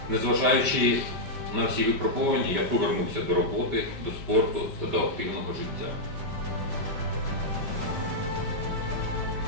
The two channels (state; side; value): late; left; 5.1 ms